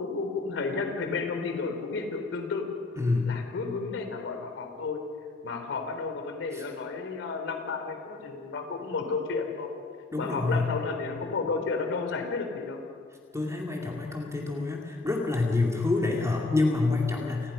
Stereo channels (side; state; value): right; quieter; 3.3 dB